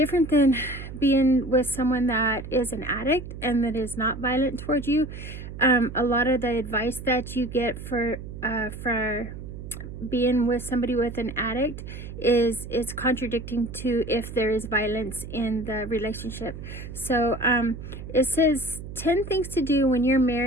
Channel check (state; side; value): noise; right; hum, 11 dB below the sound